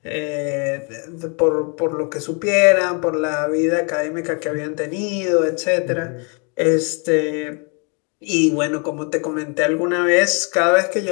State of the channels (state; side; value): quieter; right; 35.6 dB